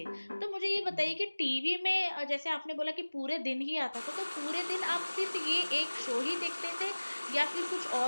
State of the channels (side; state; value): both; inverted; correlation -1.00